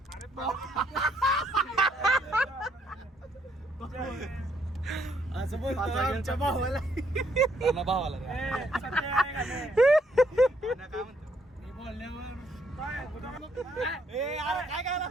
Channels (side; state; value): both; normal; correlation 0.71